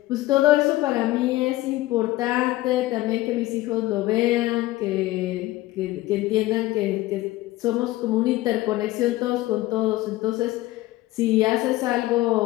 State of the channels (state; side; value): quieter; right; 17.5 dB